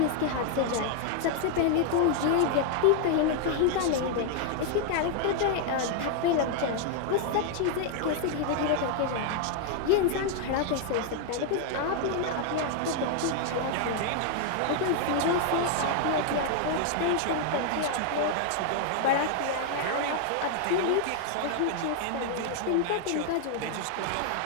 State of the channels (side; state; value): both; different; correlation 0.00